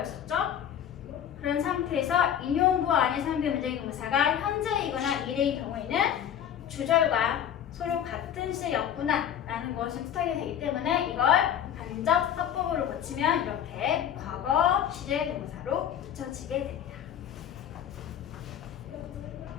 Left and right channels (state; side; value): quieter; right; 9.6 dB